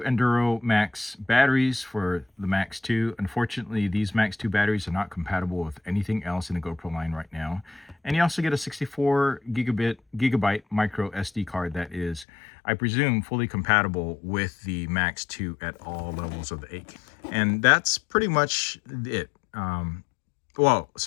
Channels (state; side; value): drops out; right; at 12.2 s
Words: Enduro Max batteries for the Max 2. Unfortunately, these Max 2 batteries are not compatible with anything else in the GoPro line right now. And you also get a 64 gigabyte micro SD card that is, I presume, fully compatible with the Max 2 at all levels of the 8K. And that's pretty much it.